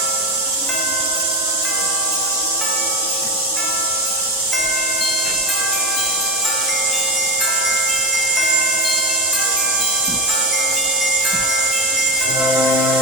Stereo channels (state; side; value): normal; both; correlation 0.19